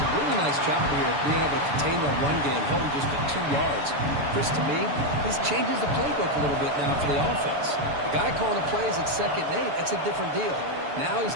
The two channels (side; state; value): left; late; 7.0 ms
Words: really nice job here of being able to contain that run game, held them just at 2 yards. Chris, to me, this changes the playbook a little bit now for the offense. The guy calling the plays at 2nd and 8, that's a different deal. Now he's